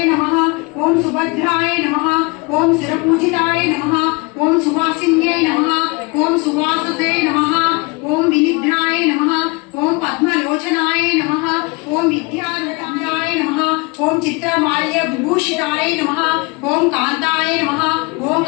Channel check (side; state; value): right; quieter; 28.0 dB